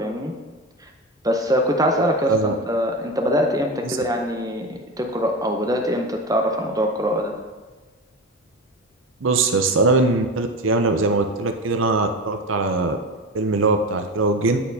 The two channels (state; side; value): normal; both; correlation 0.23